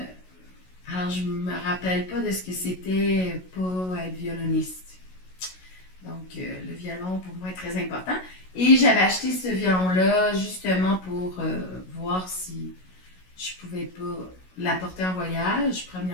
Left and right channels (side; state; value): right; late; 16 ms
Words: Alors, je me rappelle pas de ce que c'était pas être violoniste. Donc, le violon, pour moi, est très important. Et j'avais acheté ce violon-là justement pour voir si je pouvais pas l'apporter en voyage,